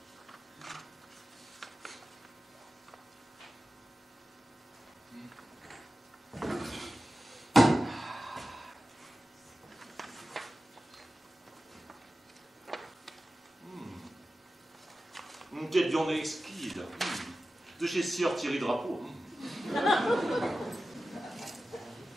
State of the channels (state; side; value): normal; both; correlation 0.94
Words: Quelle viande exquise. De chez Sieur Thierry Drapeau.